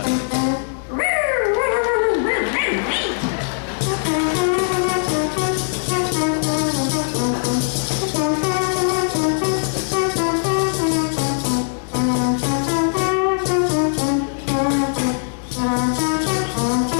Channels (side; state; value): right; silent; digital silence